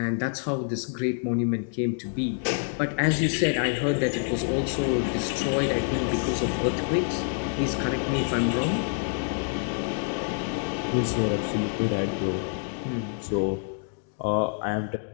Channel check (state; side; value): silent; right; 60 dB below the other